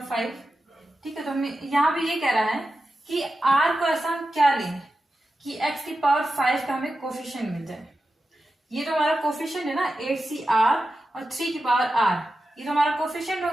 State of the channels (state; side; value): normal; both; correlation 0.91